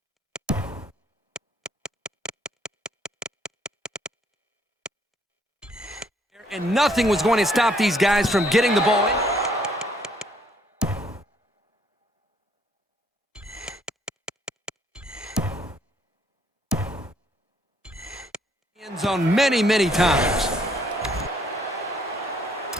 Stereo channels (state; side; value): normal; both; correlation 0.66